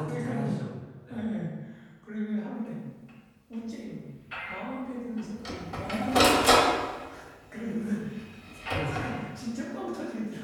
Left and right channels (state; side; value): identical; both; correlation 1.00